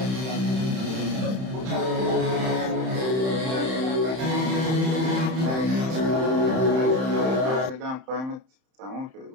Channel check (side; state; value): left; late; 31 ms